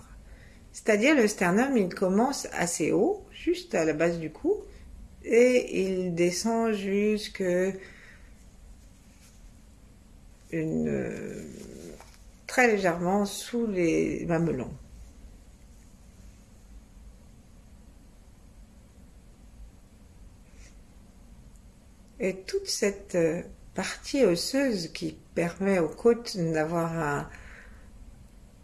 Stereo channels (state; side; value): identical; both; correlation 1.00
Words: C'est-à-dire le sternum, il commence assez haut, juste à la base du cou, et il descend jusque très légèrement sous les mamelons. Et toute cette partie osseuse qui permet aux côtes d'avoir